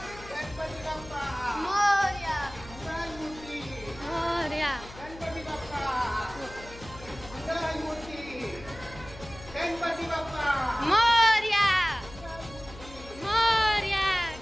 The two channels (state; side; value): noise; left; hum, 17 dB below the sound